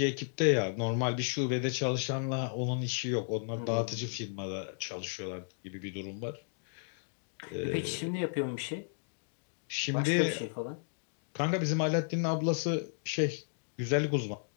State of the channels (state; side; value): silent; right; digital silence